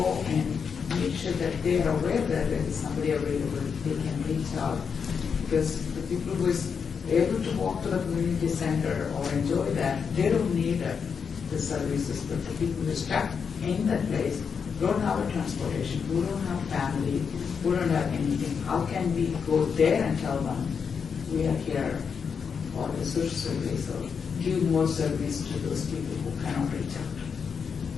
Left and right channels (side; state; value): right; quieter; 6.3 dB